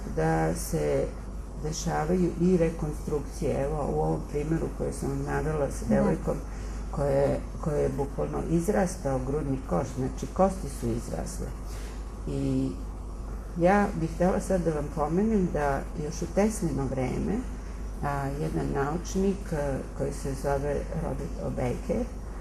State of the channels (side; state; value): both; identical; correlation 1.00